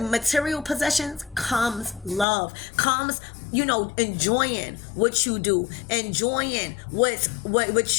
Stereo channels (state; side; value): drops out; right; at 2.2 s